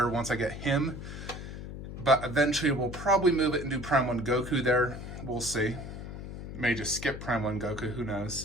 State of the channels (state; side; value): noise; left; hum, 9 dB below the sound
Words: once I get him. But eventually we'll probably move it and do Prime 1 Goku there. We'll see. May just skip Prime 1 Goku, who